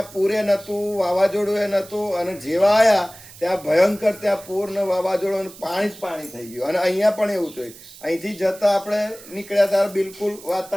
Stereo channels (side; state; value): right; noise; hiss, 19 dB below the sound